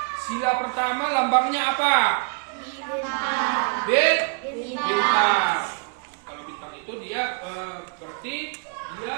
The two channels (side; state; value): left; quieter; 36.5 dB